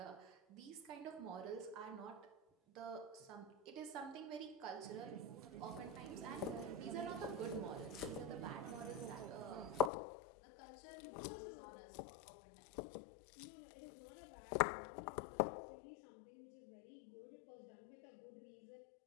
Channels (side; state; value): right; drops out; at 9.9 s